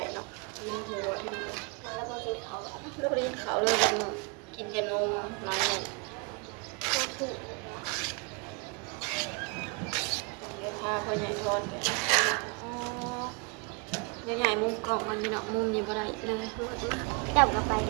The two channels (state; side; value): quieter; left; 34.2 dB